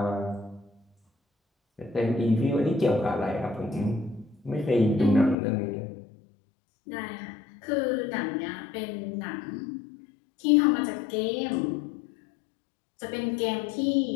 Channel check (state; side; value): drops out; right; at 5.4 s